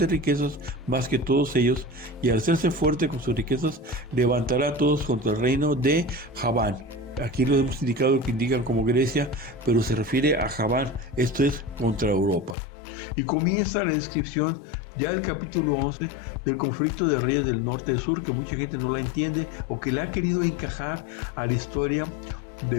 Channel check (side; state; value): right; drops out; at 12.6 s